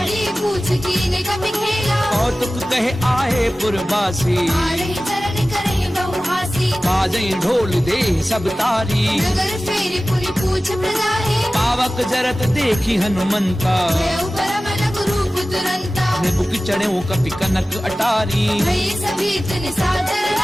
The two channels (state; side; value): normal; both; correlation 0.96